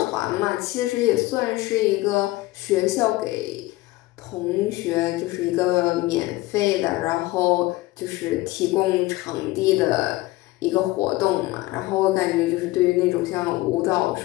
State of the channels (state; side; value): quieter; right; 19.1 dB